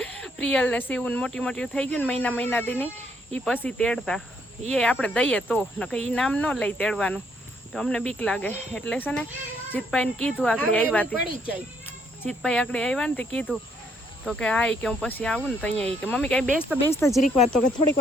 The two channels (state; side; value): normal; both; correlation 0.70